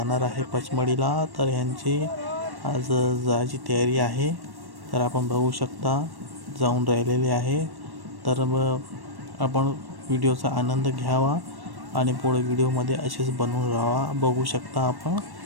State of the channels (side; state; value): left; late; 1.1 ms